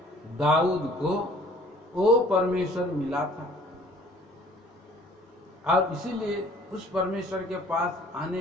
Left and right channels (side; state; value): both; normal; correlation 0.55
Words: दाऊद को वो परमेश्वर मिला था, और इसीलिए उस परमेश्वर के पास